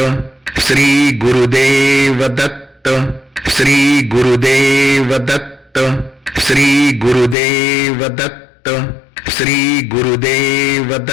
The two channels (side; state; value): right; drops out; at 7.4 s